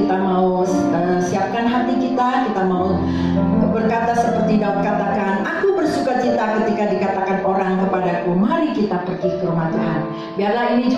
mau siapkan hati kita mau berkata seperti Daud katakan, aku bersuka cita ketika dikatakan orang kepadaku, mari kita pergi ke rumah Tuhan. Biarlah ini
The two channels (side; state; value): both; identical; correlation 1.00